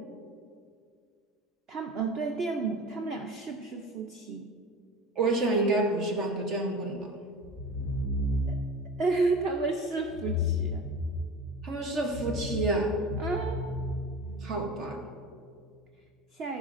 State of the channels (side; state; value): both; normal; correlation 0.33